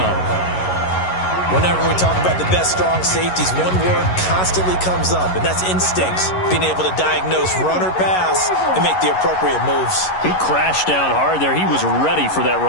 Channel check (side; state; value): right; late; 11 ms